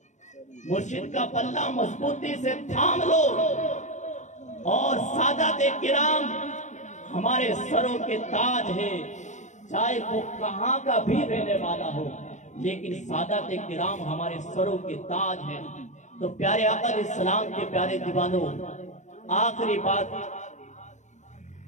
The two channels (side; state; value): right; late; 0.35 ms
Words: مرشد کا پلہ مضبوطی سے تھام لو، اور سادات کرام ہمارے سروں کے تاج ہیں، چاہے وہ کہاں کا بھی رہنے والا ہو، لیکن سادات کرام ہمارے سروں کے تاج ہیں۔ تو پیارے آقا علیہ السلام کے پیارے دیوانوں، آخری